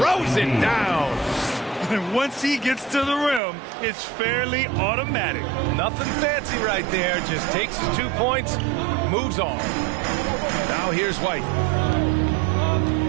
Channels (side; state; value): left; drops out; at 3.4 s